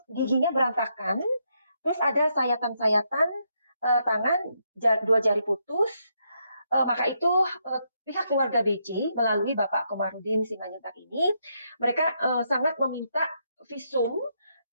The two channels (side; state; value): both; inverted; correlation -0.78